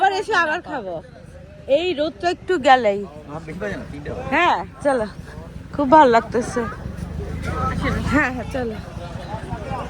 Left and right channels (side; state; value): both; identical; correlation 1.00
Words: এসে আবার খাবো। এই রোদটা একটু গেলেই। বেশি বাজে না, 3টা বাজে। হ্যাঁ চলো, খুব ভালো লাগতেছে। হ্যাঁ চলো